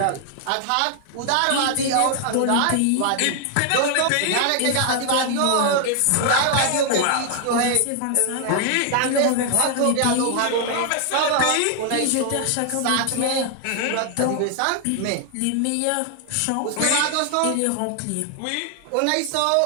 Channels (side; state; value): both; different; correlation 0.00